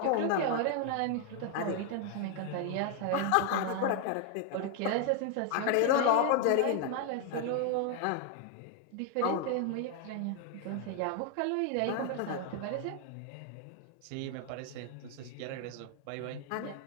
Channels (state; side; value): different; both; correlation 0.00